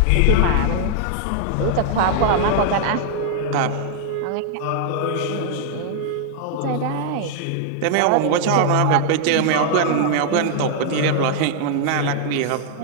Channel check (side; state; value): both; different; correlation -0.01